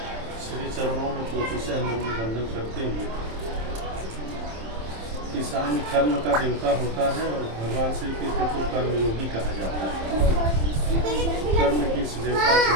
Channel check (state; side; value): late; left; 27 ms